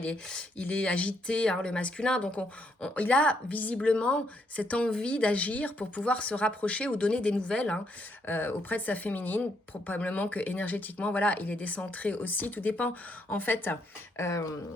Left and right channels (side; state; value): both; normal; correlation 0.74